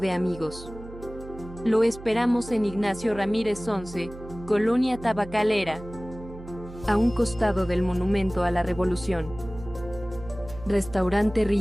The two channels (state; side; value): noise; right; hum, 15 dB below the sound